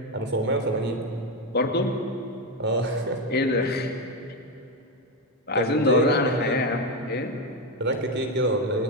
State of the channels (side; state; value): both; normal; correlation 0.10